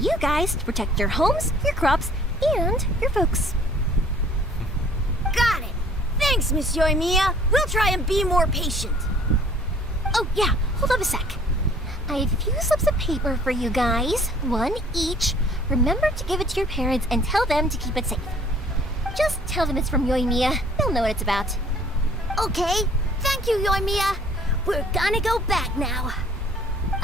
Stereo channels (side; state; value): both; normal; correlation 0.55